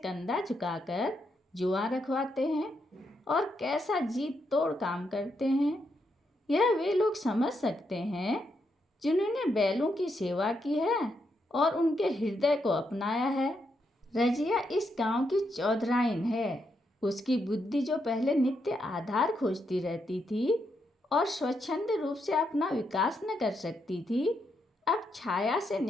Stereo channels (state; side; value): normal; both; correlation 0.80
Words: झुकाकर जुआ रखवाते हैं और कैसा जीत तोड़ काम करते हैं। यह वे लोग समझ सकते हैं जिन्होंने बैलों की सेवा की है और उनके हृदय को अपनाया है। रजिया इस गांव की चौधराइन है। उसकी बुद्धि जो पहले नित्य आधार खोजती रहती थी और स्वच्छंद रूप से अपना विकास न कर सकती थी, अब छाया से